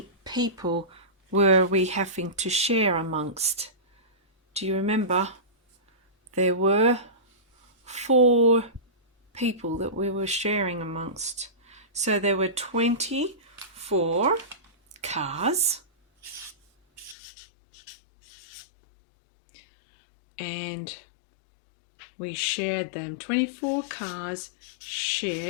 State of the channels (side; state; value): right; drops out; at 17.2 s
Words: people were we having to share amongst? Do you remember? There were 4 people that we were sharing amongst. So there were 24 cars. And we shared them. 24 cars